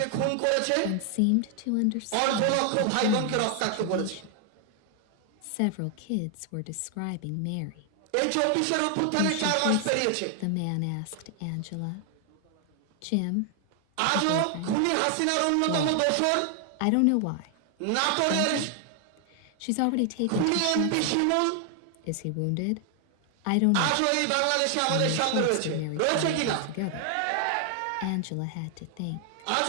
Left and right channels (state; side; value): different; both; correlation 0.00